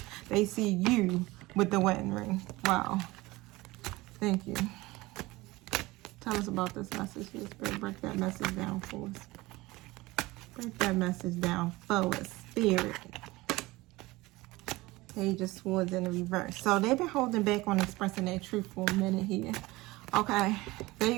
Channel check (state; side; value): quieter; left; 20.5 dB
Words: They see you with the wedding ring. Wow. Thank you. Tell us about this message here, Spirit. Break that message down for us. Break that message down for us, Spirit. Page of Swords in the reverse. So they've been holding back on expressing their truth for a minute here. Okay.